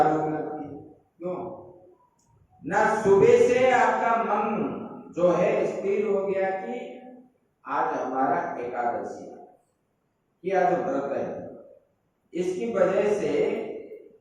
भूख लगती है। क्यों? ना सुबह से आपका मन जो है स्थिर हो गया कि आज हमारा एकादशी है, कि आज व्रत है। इसकी वजह से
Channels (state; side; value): identical; both; correlation 1.00